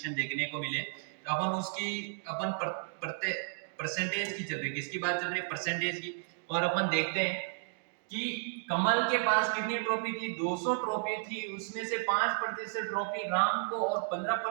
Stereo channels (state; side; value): silent; left; digital silence